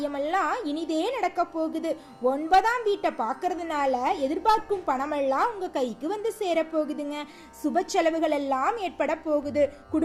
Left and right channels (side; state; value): both; identical; correlation 1.00